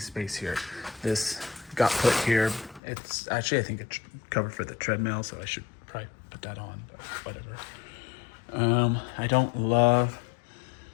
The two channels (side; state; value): right; drops out; at 2.8 s